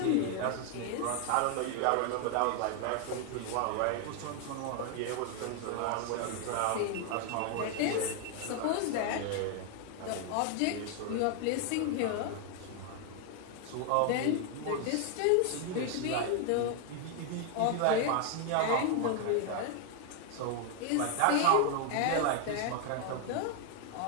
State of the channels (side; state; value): both; different; correlation 0.01